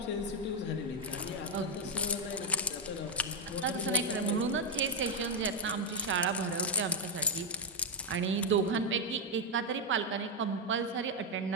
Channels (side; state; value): both; normal; correlation 0.00